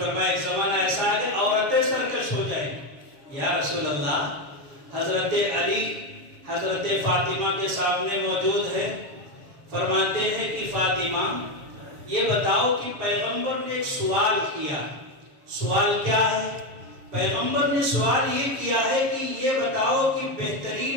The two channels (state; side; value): late; left; 7.6 ms